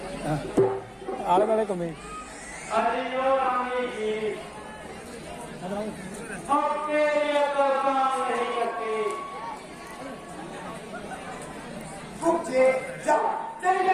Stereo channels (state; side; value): identical; both; correlation 1.00